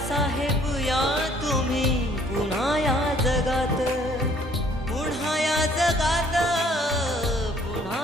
या तुम्ही पुन्हा या जगात, पुन्हा या जगात,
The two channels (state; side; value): normal; both; correlation 0.60